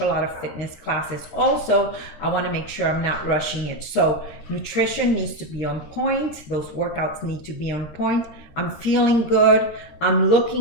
lot of fitness classes also, I want to make sure I'm not rushing it. So nutrition needs to be on point. Those workouts need to be on point. I'm feeling good. I'm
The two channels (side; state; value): right; late; 13 ms